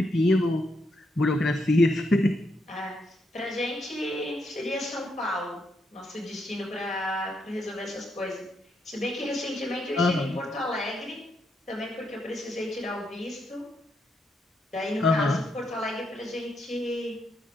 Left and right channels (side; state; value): both; normal; correlation 0.79